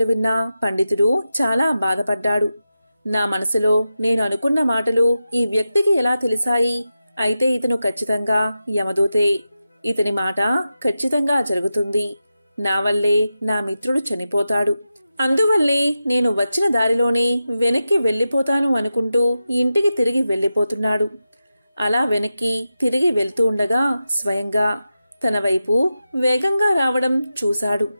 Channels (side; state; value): both; inverted; correlation -0.91